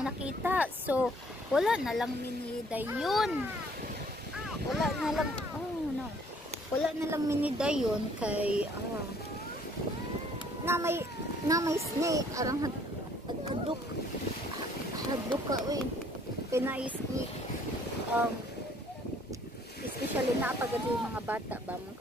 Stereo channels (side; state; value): both; normal; correlation 0.60